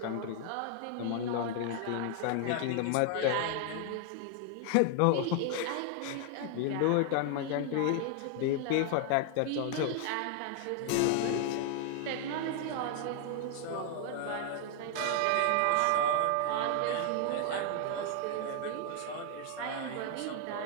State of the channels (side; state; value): both; different; correlation 0.00